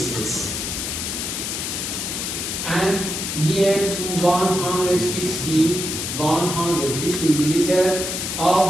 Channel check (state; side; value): noise; left; hiss, 3 dB below the sound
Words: And near to 150 milliliter